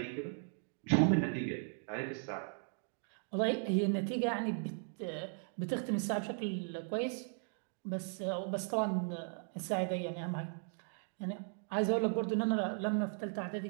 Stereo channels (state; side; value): silent; left; 53 dB below the other